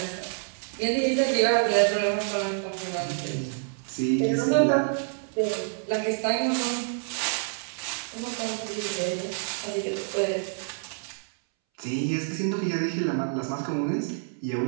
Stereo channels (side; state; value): left; silent; 60 dB below the other